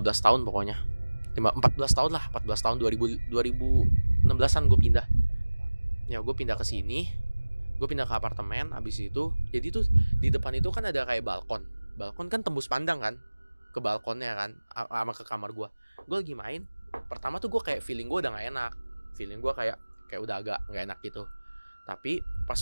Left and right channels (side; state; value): both; inverted; correlation -1.00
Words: tahun pokoknya. 14 tahun lah, 14 tahun 2016an gue pindah. Ya gue pindah ke sini. Gue pindah ke apartemen. Abis itu jadi tuh di depan itu kan ada kayak balkon. Balkon kan tembus pandang kan ke balkonnya kan, sama ke kamar gue. Gue lagi main. Pertama tuh gue kayak feeling gue udah gak enak. Feeling gue kayak udah agak gak enak gitu. Tapi pas